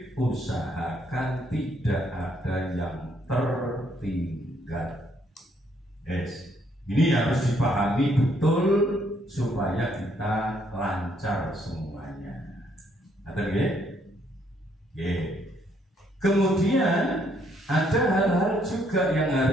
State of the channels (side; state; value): both; normal; correlation 0.70